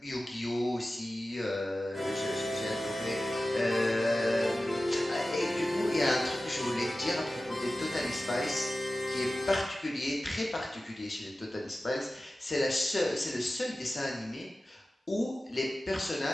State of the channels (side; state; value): both; normal; correlation 0.95